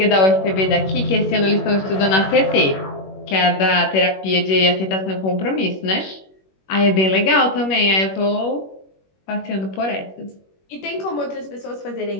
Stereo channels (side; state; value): right; late; 21 ms